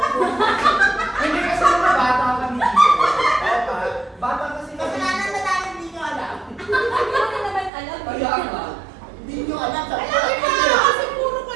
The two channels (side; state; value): left; drops out; at 7.7 s